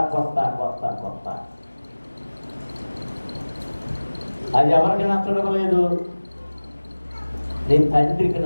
కొత్త కొత్త కొత్త. అది ఎవరికి నచ్చడం లేదు? నీ తండ్రికి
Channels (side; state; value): both; inverted; correlation -1.00